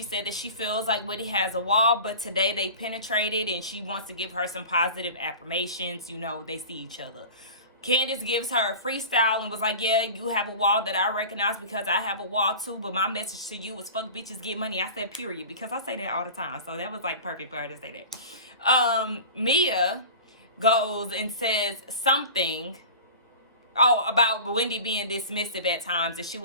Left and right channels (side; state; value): both; inverted; correlation -0.36